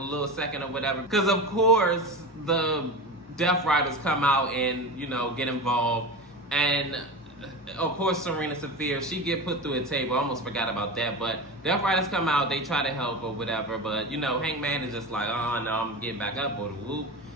second or whatever, because of course the Death Riders come out and, you know, get involved. And of course Serena Saphir, she get put through a table. I almost forgot about that. But Death Riders come out, they try to help or whatever. But, you know, Hangman is just like, oh no, I'm getting back up, or the whoop.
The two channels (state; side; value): normal; both; correlation 0.26